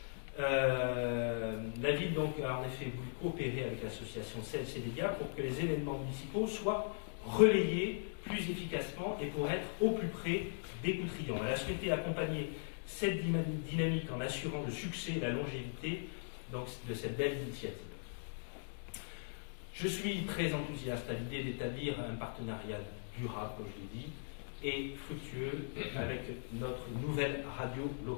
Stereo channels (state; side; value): silent; right; digital silence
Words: La ville donc a en effet voulu coopérer avec l'association CLC-Média pour que les événements municipaux soient relayés plus efficacement et pour être au plus près des Coutrillons. Elle a souhaité accompagner cette dynamique en assurant le succès et la longévité donc, de cette belle initiative. Je suis très enthousiaste à l'idée d'établir un partenariat durable, comme je l'ai dit, et fructueux avec notre nouvelle radio